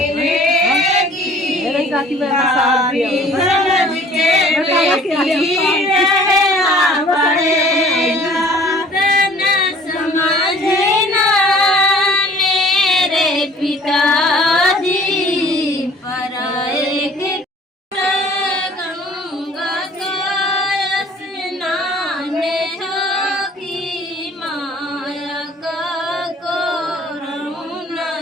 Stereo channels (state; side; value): normal; both; correlation 0.51